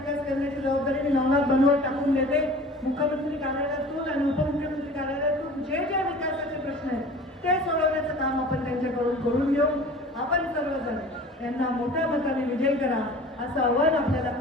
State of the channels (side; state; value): both; normal; correlation 0.42